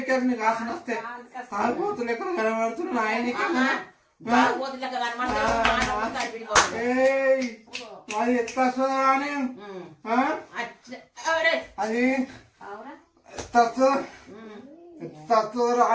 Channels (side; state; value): both; identical; correlation 1.00